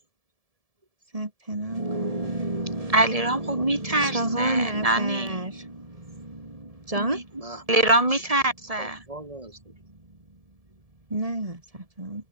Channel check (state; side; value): late; left; 1.7 ms